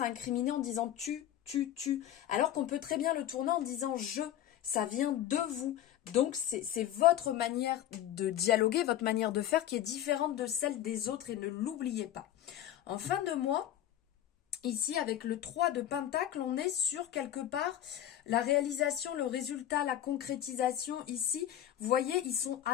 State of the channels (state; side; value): quieter; right; 11.6 dB